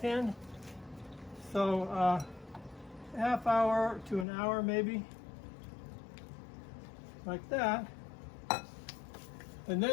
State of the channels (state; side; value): drops out; right; at 4.2 s